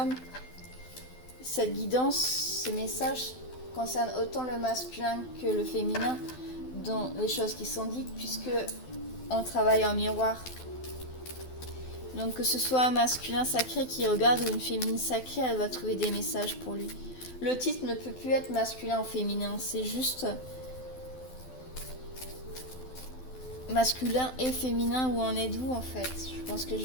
cette guidance, ces messages concernent autant le masculin que le féminin dans les choses qui sont dites, puisque on travaille en miroir. Donc que ce soit un masculin sacré qui regarde ou une féminine sacrée, elle va trouver des messages pour lui. Le titre ne peut plus être masculin ou féminin, c'est juste masculin et féminin, où en êtes-vous en fait? Je pense que je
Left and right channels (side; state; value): right; late; 12 ms